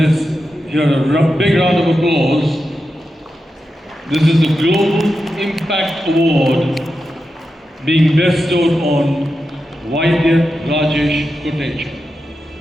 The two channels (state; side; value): normal; both; correlation 0.89